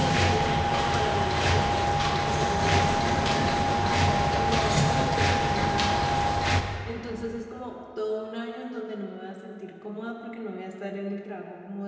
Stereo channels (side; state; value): both; identical; correlation 1.00